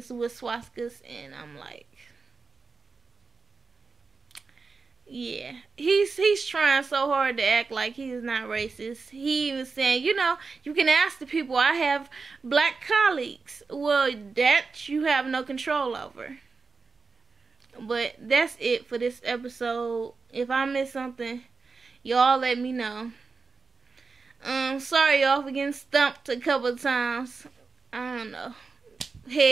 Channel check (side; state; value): left; quieter; 4.5 dB